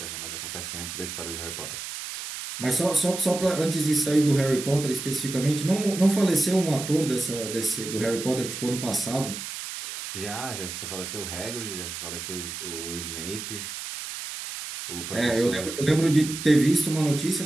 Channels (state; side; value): noise; right; hiss, 8 dB below the sound